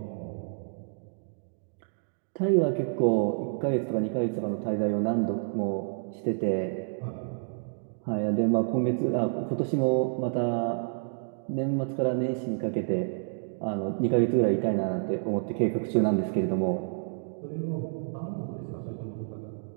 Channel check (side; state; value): left; silent; digital silence